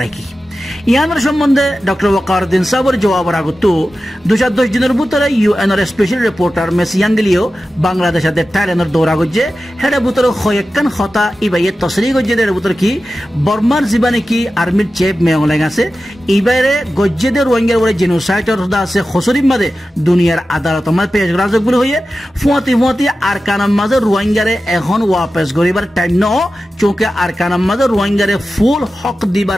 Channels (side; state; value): both; normal; correlation 0.93